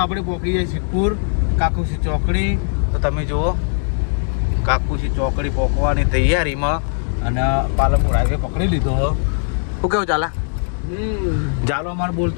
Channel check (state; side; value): silent; right; digital silence